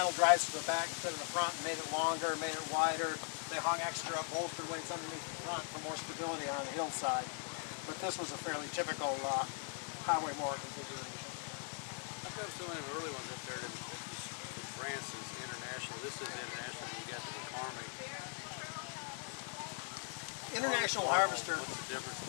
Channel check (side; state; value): right; silent; 51 dB below the other